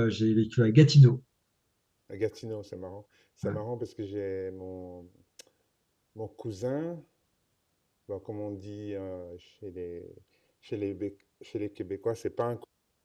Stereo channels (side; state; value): both; identical; correlation 1.00